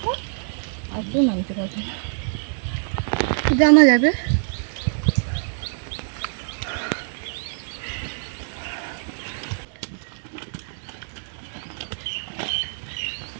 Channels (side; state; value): left; silent; digital silence